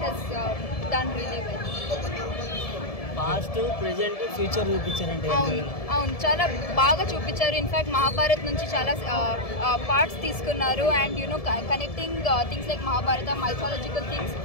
has done really well. Past present future చూపించారంటే అవును చాలా బాగా చూపించారు. In fact Mahabharat నుంచి చాలా parts తీసుకున్నారు and you know connecting things like Mahabharata mythological things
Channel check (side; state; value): right; late; 1.7 ms